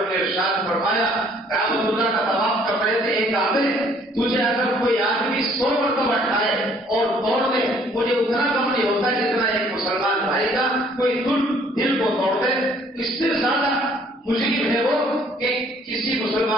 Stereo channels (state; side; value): normal; both; correlation 0.60